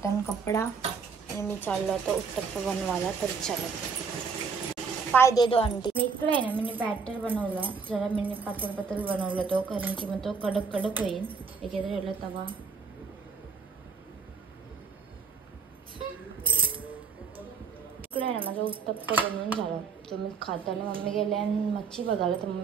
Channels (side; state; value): left; quieter; 5.3 dB